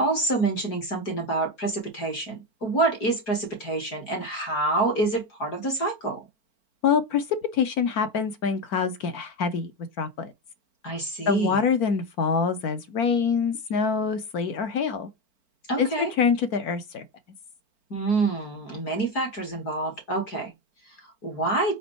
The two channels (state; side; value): late; right; 4.4 ms